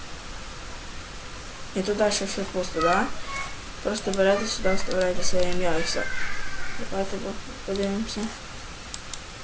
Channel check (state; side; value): identical; both; correlation 1.00